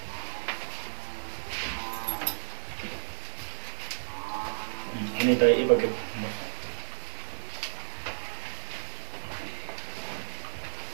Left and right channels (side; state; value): left; silent; 56 dB below the other